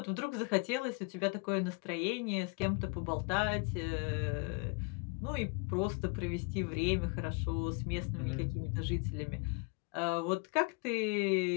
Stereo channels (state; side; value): quieter; right; 32.0 dB